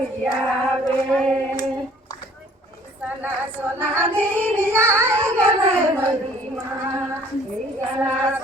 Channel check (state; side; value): normal; both; correlation 0.55